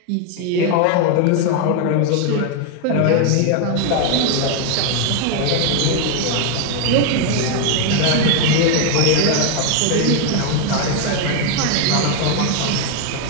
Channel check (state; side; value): different; both; correlation 0.01